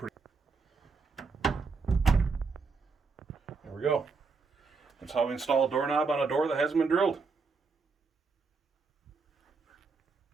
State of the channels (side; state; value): left; quieter; 4.7 dB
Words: There we go. That's how we install a doorknob on a door that hasn't been drilled.